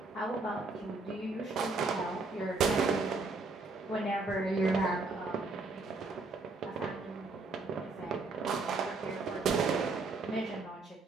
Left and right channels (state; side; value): quieter; left; 3.6 dB